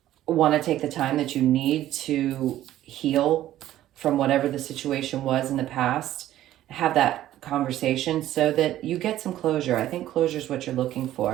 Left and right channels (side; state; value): left; quieter; 13.4 dB